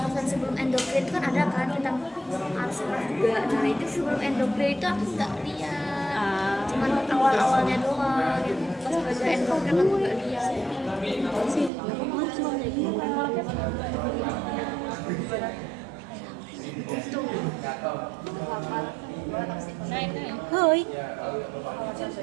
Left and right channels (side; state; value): left; drops out; at 11.7 s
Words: sebelum endokrin itu kan ada kan tentang arsenal juga. Nah itu sebelum endokrin itu aku nggak lihat, cuman awalnya doang. Pas belajar endokrin aku nggak lihat. Tuh, hafal. Oh Boy.